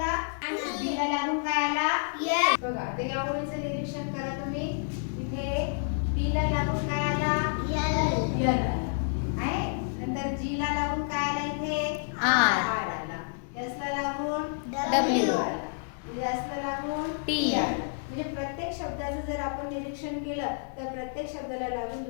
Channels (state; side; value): silent; right; digital silence